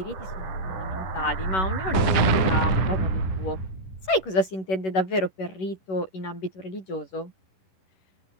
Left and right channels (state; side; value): late; right; 11 ms